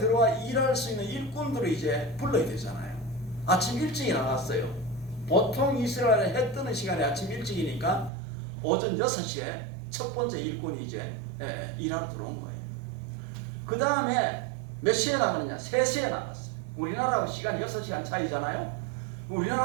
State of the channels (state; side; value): drops out; left; at 8.1 s